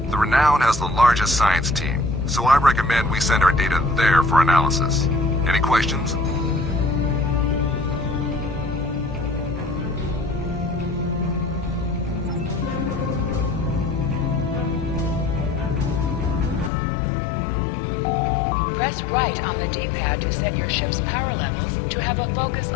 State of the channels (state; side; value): drops out; right; at 16.7 s